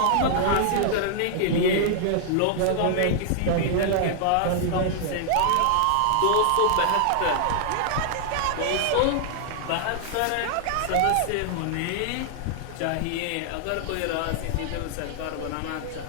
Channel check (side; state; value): both; different; correlation -0.01